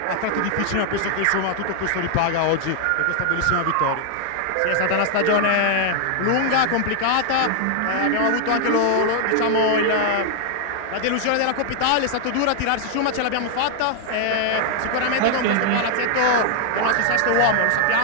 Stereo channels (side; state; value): both; different; correlation 0.00